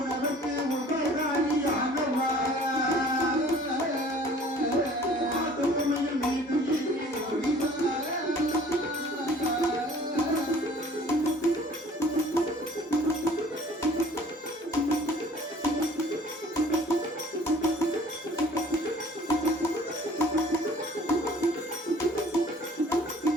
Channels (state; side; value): normal; both; correlation 0.51